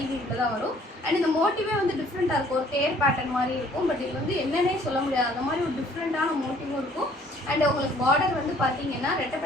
வீட்டில் தான் வரும். அண்ட் இந்த மோட்டிவே வந்து டிஃப்ரெண்ட்டாக இருக்கும். ஒரு தேர் பேட்டர்ன் மாதிரி இருக்கும். பட் இது வந்து என்னன்னே சொல்ல முடியாது, அந்த மாதிரி ஒரு டிஃப்ரெண்ட்டான மோட்டிவும் இருக்கும். அண்ட் உங்களுக்கு பார்டர் வந்து பார்த்தீங்கன்னா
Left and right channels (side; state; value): both; normal; correlation 0.59